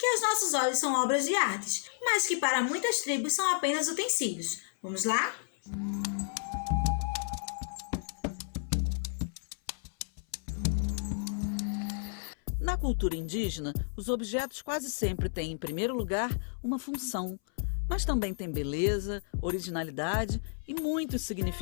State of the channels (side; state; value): right; silent; 57 dB below the other